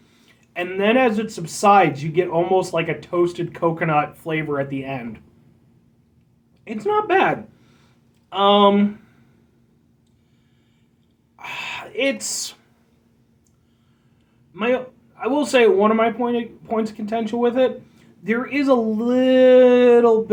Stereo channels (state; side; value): identical; both; correlation 1.00